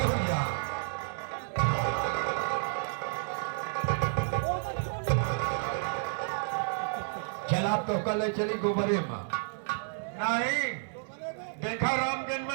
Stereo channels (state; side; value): silent; left; digital silence